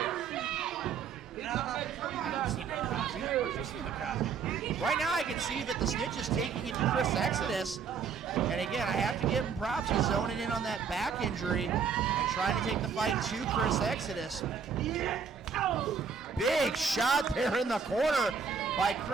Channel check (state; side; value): quieter; left; 6.1 dB